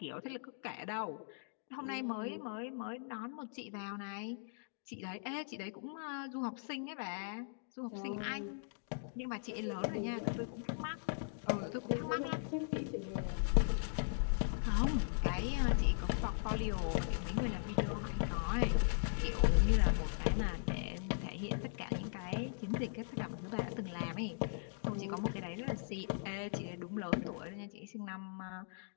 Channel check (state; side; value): silent; right; digital silence